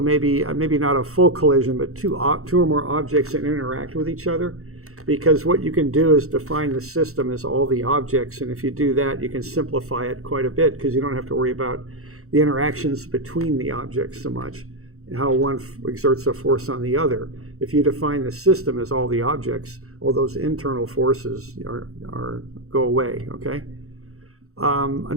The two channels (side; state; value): left; late; 0.64 ms